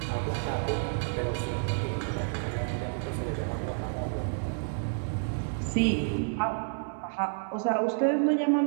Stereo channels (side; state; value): left; silent; digital silence